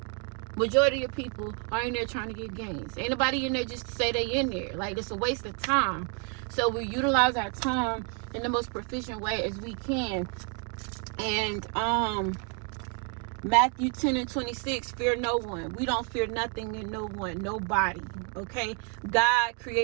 Majority of people are in there trying to get gains. Ain't nobody in there just to say they in there. Like, it's a waste of time. So we utilize our time in the most proficient way as we can. And Matthew 10:26, fear no one. We don't fear nothing and no one, nobody. Okay, God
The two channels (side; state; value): left; quieter; 38.6 dB